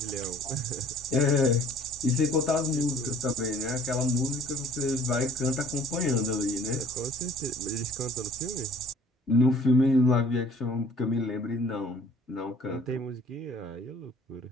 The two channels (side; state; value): both; normal; correlation 0.53